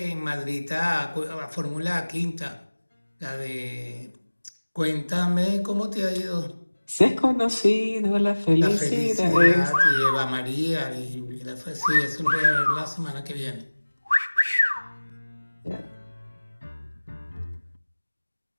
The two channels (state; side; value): inverted; both; correlation -1.00